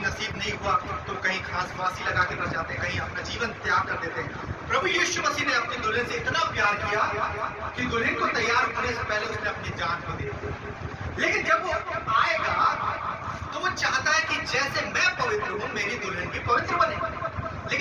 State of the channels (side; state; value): both; identical; correlation 1.00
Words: नहीं हुआ तो कहीं खास फांसी लगा के मर जाते हैं, कहीं अपना जीवन त्याग कर देते हैं। प्रभु यीशु मसीह ने अपनी दुल्हन से इतना प्यार किया कि दुल्हन को तैयार होने से पहले उसने अपनी जान को दे दिया। लेकिन जब वो आएगा तो वो चाहता है कि जैसे मैं पवित्र हूं मेरी दुल्हन भी पवित्र बने।